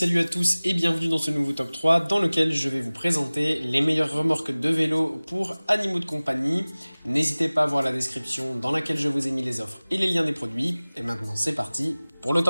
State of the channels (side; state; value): both; inverted; correlation -0.99